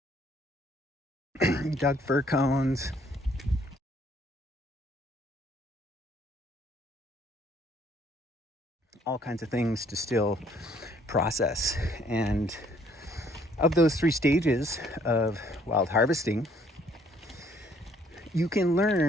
Dug fir cones, all kinds of things to still process. And of those 3 stages of wild harvesting, you can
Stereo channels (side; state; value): both; normal; correlation 0.64